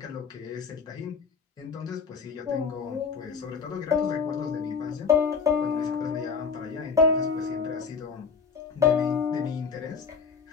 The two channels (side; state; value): right; quieter; 5.7 dB